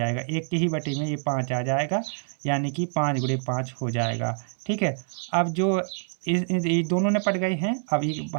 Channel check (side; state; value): left; silent; 61 dB below the other